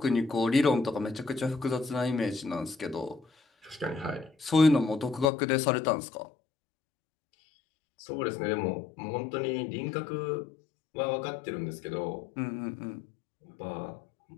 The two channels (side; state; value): right; drops out; at 5.3 s